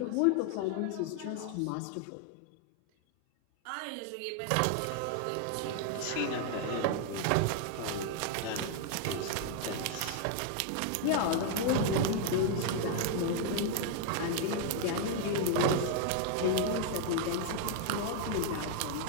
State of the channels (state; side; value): different; both; correlation 0.00